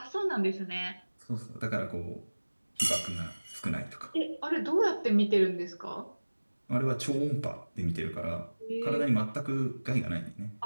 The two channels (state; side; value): inverted; both; correlation -1.00